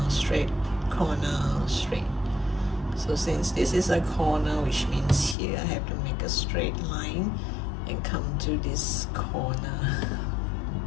straight, corner, straight. So since this is a corner, which means here I have to make a straight line and come to this corner.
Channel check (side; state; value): right; drops out; at 5.4 s